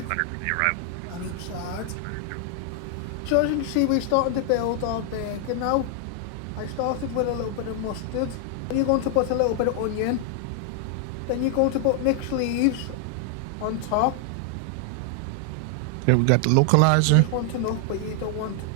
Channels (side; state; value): both; different; correlation 0.00